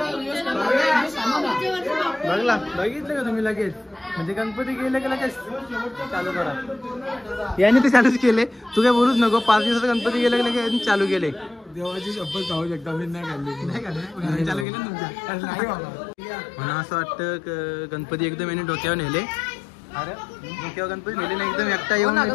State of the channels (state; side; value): drops out; right; at 14.7 s